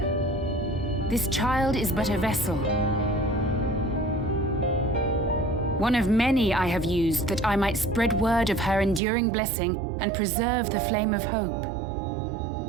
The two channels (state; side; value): drops out; left; at 9.0 s